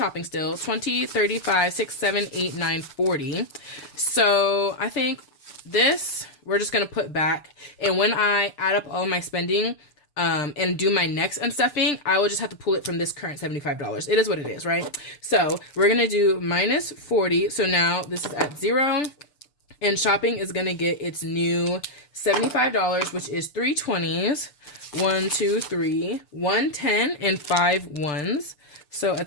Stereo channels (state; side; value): late; right; 6.8 ms